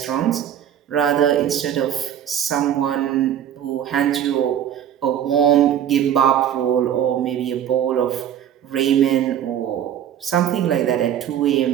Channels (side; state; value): left; quieter; 10.1 dB